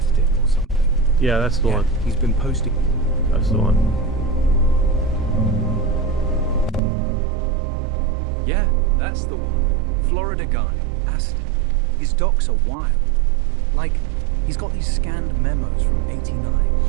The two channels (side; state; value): left; drops out; at 6.8 s